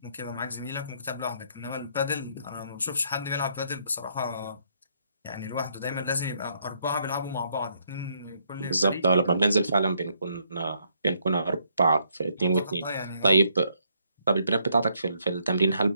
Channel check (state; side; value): inverted; both; correlation -0.72